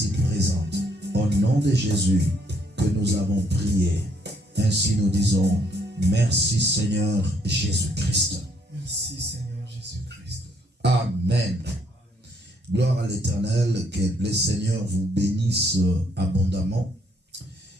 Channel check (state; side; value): normal; both; correlation 0.69